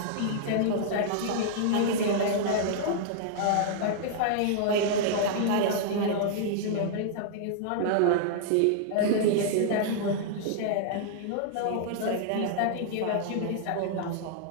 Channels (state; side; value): different; both; correlation -0.01